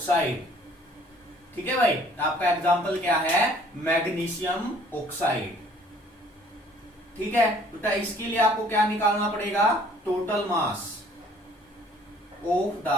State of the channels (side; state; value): both; normal; correlation 0.57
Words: ठीक है भाई, आपका एग्जांपल क्या है, मैग्नीशियम ऑक्साइड। ठीक है, बेटा इसके लिए आपको क्या निकालना पड़ेगा, total mass of the